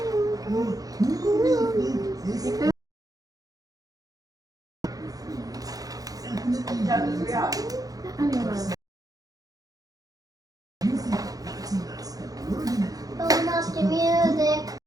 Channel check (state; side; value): late; left; 0.18 ms